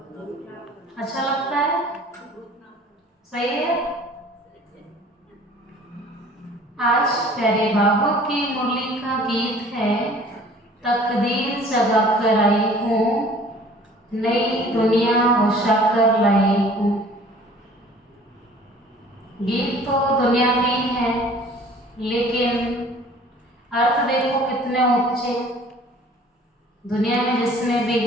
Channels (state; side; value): normal; both; correlation 0.50